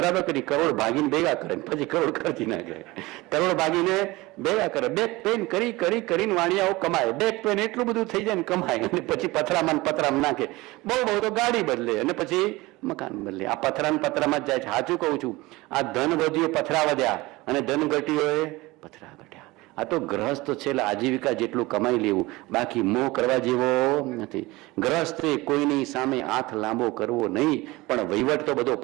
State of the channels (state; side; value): quieter; left; 21.0 dB